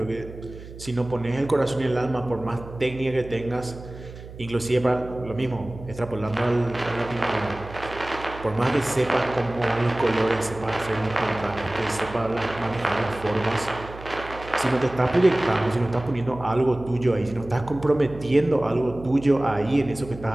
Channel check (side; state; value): right; noise; hum, 15 dB below the sound